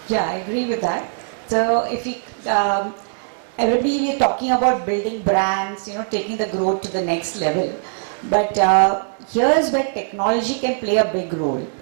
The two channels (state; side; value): silent; left; digital silence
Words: Yeah, I agree with that. So if we, everybody is talking about building brands, taking the growth to the next level. But here's where technology can play a big role.